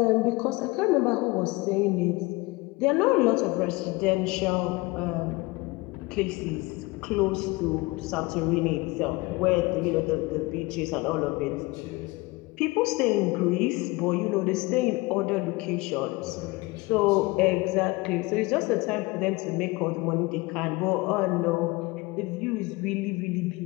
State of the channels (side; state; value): right; quieter; 23.3 dB